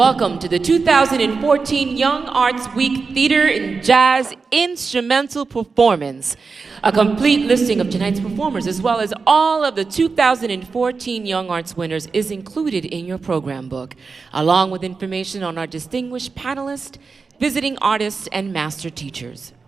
to the 2014 Young Arts Week Theater and Jazz Instrumental Performance. A complete listing of tonight's performers, as well as all of the 2014 Young Arts winners, is included in your program book, along with information on our distinguished panelists, visiting artists, and master teachers.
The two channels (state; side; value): quieter; left; 4.7 dB